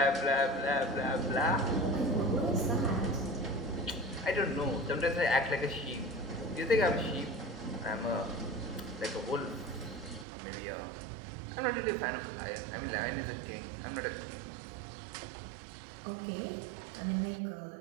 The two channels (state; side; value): drops out; left; at 10.2 s